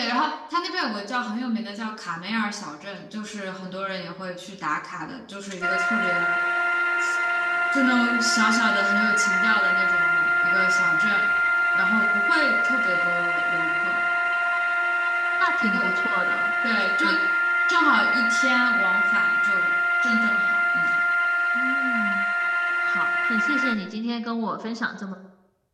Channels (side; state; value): both; identical; correlation 1.00